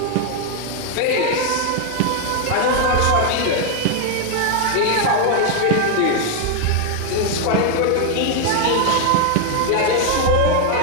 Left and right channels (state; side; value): different; both; correlation 0.01